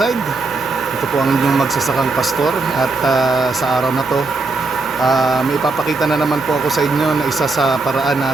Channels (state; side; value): quieter; left; 3.6 dB